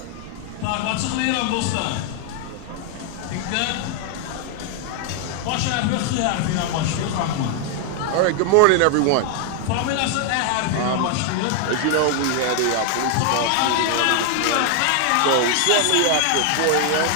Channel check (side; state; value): both; different; correlation 0.00